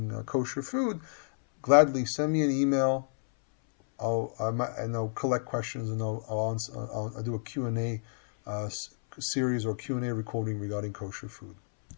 kosher food, gladly send me an email. I'll collect questions, and I'll do a Q&A series or Q&A recording regarding kosher food.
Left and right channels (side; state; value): right; silent; 58 dB below the other